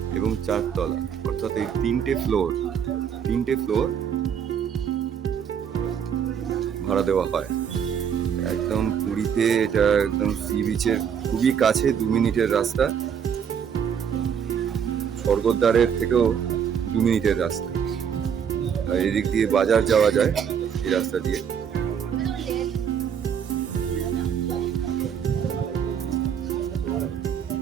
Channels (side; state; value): left; quieter; 7.8 dB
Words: এবং 4তলা, অর্থাৎ এই 3টে ফ্লোর ভাড়া দেওয়া হয়। একদম পুরীতে এটা একদম সি বিচের খুবই কাছে, 2 মিনিটের রাস্তা। স্বর্গদ্বারের থেকেও 2 মিনিটের রাস্তা। আর এদিক দিয়ে বাজার যাওয়া যায় এই রাস্তা দিয়ে।